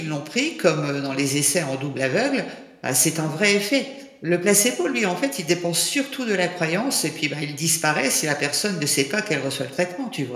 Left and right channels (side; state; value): both; identical; correlation 1.00